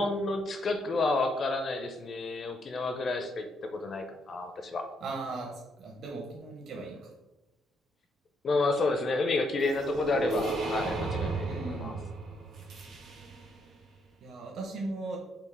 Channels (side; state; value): both; normal; correlation 0.74